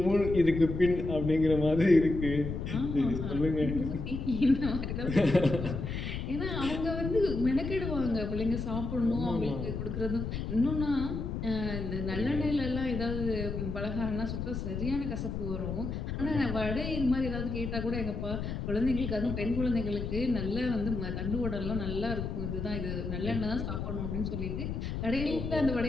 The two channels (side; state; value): left; noise; rumble, 4 dB below the sound